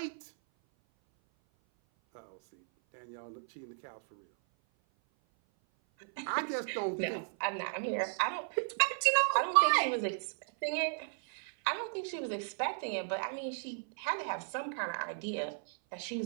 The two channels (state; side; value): silent; left; 55 dB below the other